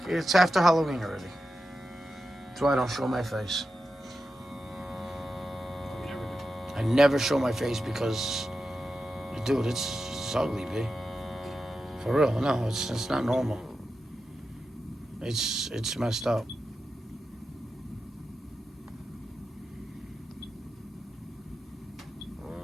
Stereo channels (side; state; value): both; normal; correlation 0.90